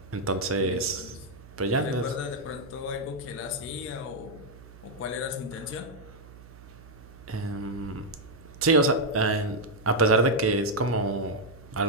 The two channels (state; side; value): noise; right; hum, 19 dB below the sound